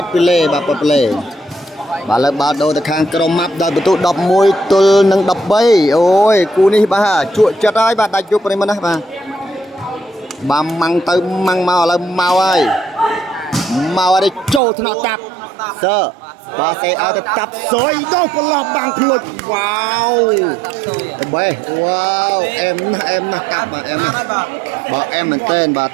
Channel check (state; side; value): drops out; left; at 14.6 s